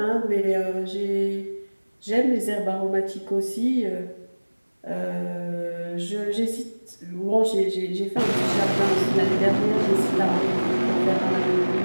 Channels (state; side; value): inverted; both; correlation -1.00